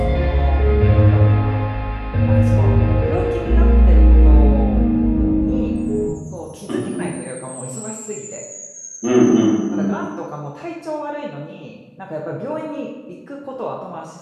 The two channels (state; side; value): identical; both; correlation 1.00